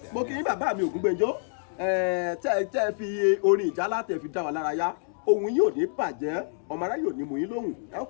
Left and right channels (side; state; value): right; silent; digital silence